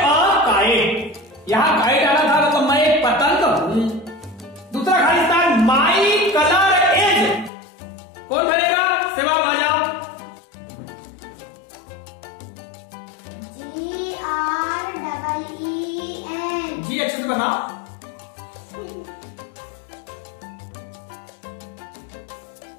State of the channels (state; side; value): drops out; right; at 7.5 s